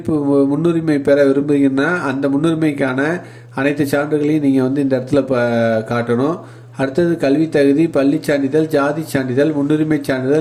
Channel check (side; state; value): both; identical; correlation 1.00